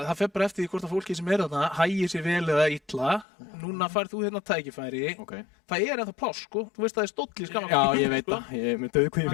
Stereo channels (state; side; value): drops out; right; at 3.2 s